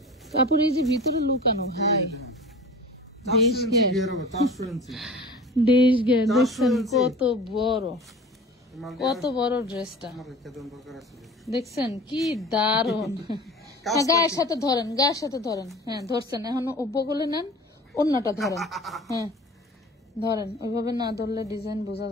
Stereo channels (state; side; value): normal; both; correlation 0.39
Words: কাপড় এই যে ভিতরে লুকানো ভাই, 400 ইঞ্চি ঘের হবে, 400 ইঞ্চি দেশ ঘের দেখছেন কত বড়, কত বড় ড্রেসটা আমার রেখে দেন দরকার আছে। দেখছেন কি দারুন। গায়ের সাথে ধরেন, গায়ের সাথে ধরেন, হ্যাঁ ধরছেন, এখন বগলে নেন, অন্যটা ধরেন, হ্যাঁ ধরেন, ওইভাবে না ধরলে ডিজাইন বোঝা